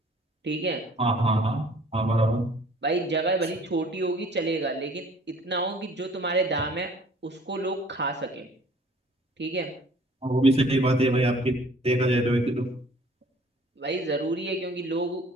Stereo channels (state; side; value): normal; both; correlation 0.53